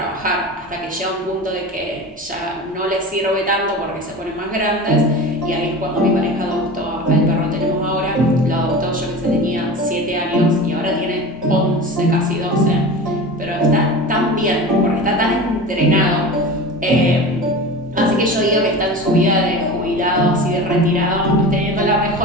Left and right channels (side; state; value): both; normal; correlation 0.32